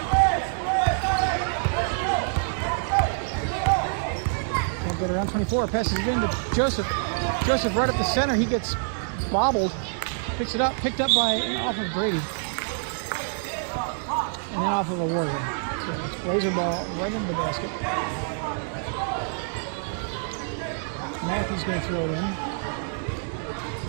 Can't get around 24. Passes it into Joseph. Joseph right up the center. He gets bobbled. Picks it up. Picked up by off of Brady. And then off of a Warrior. So it's Blazer ball right into the basket. Matthew's going to throw it in.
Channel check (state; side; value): silent; left; digital silence